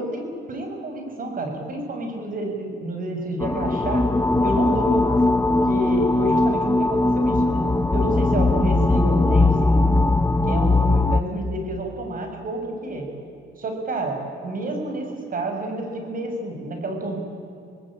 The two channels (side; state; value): both; normal; correlation 0.81